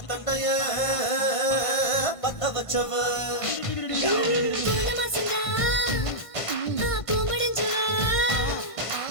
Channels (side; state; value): right; late; 1.5 ms